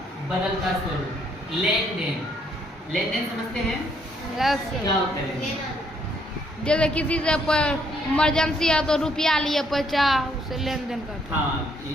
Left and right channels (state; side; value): normal; both; correlation 0.69